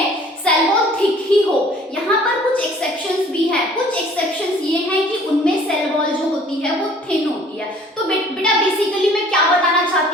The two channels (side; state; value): both; normal; correlation 0.53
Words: सेल वॉल थिक ही हो, यहाँ पर कुछ एक्सेप्शंस भी हैं। कुछ एक्सेप्शंस ये हैं कि उनमें सेल वॉल जो होती है वो थिन होती है। तो बेटा बेसिकली मैं क्या बताना